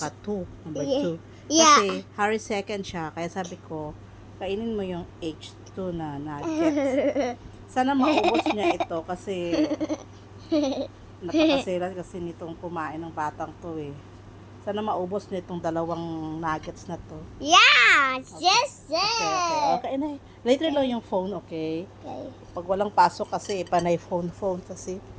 2, number 2. Yeah. Kasi Harry second siya, kaya sabi ko, kainin mo yung H2 na nuggets. Sana maubos niya ito kasi napakasilan kasi nitong kumain ng batang to eh. Sana maubos niya itong dalawang nuggets na to. Yeah. Okay. Yes. Okay na. Later lang yung phone, okay? Okay. Pag walang pasok kasi, panay phone kasi.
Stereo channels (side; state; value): both; identical; correlation 1.00